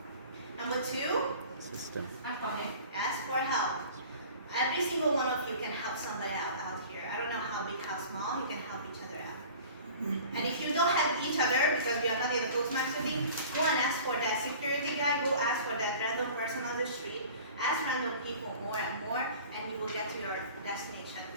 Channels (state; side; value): inverted; both; correlation -0.43